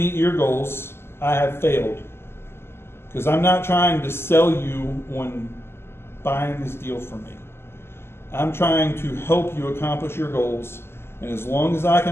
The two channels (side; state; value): right; late; 0.12 ms